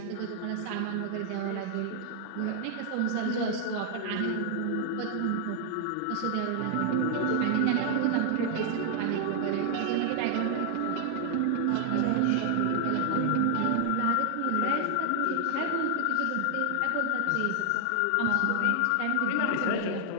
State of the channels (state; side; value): different; both; correlation 0.00